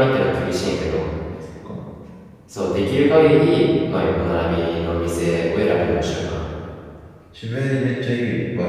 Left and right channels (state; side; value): identical; both; correlation 1.00